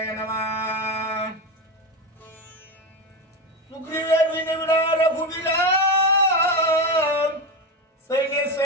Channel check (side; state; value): both; normal; correlation 0.17